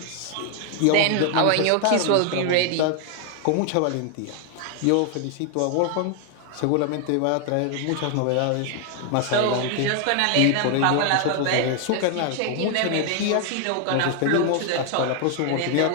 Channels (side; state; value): both; different; correlation 0.00